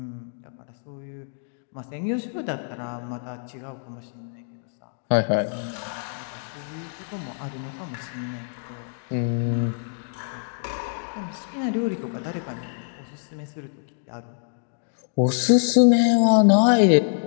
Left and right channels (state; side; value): silent; right; digital silence